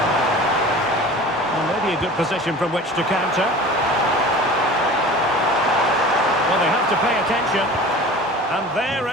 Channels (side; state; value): both; normal; correlation 0.40